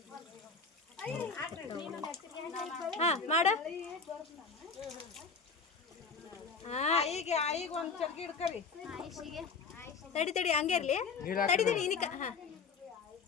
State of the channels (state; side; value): quieter; right; 4.9 dB